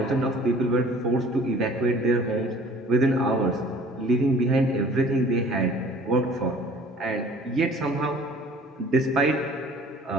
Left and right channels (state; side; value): normal; both; correlation 0.50